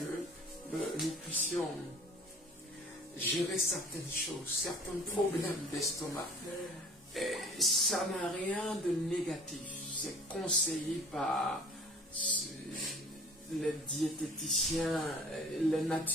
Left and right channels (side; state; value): both; normal; correlation 0.48